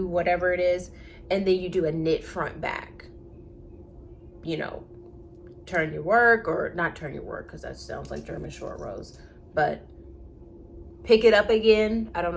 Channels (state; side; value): identical; both; correlation 1.00